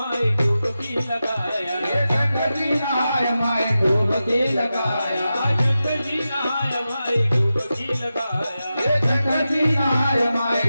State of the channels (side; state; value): both; inverted; correlation -0.92